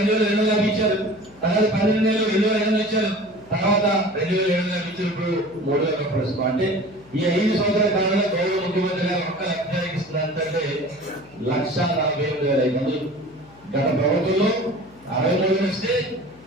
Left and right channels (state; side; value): noise; left; hum, 25 dB below the sound